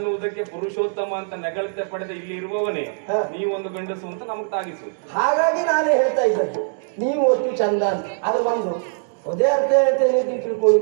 ಪುರುಷೋತ್ತಮ ಅಂತ ನೆಗಳತೆ ಪಡೆದ ಇಲ್ಲಿ ಇರುವವನೇ ನೀವೊಂದು ಗಂಡಸು ಅಂತ ನಮಗ್ ತಾಗಿಸು. ಹಾಗಾಗಿ ನಾನೇ ಹೇಳ್ತಾ ಇದ್ದದ್ದು ನೀವು ಒಟ್ಟು ಚಂದ ಅಂತ. ಅದು ಬಂದು ಅದೇ ಅರ್ಥ ಹೇಳ್ತೇನೆ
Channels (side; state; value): left; silent; digital silence